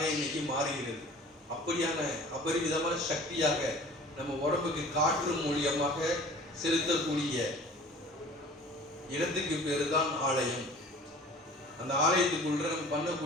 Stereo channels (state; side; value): normal; both; correlation 0.45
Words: இன்னைக்கு மாறுகிறது. அப்படியான அபரிவிதமான சக்தியாக நம்ம உடம்புக்கு காற்று மூலியமாக செலுத்தக்கூடிய இடத்துக்கு பேரு தான் ஆலயம். அந்த ஆலயத்துக்குள்ள நம்ம